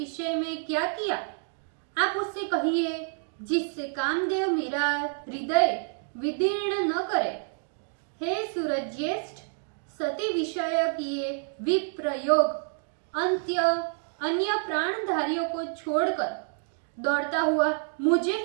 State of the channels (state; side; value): silent; left; 56 dB below the other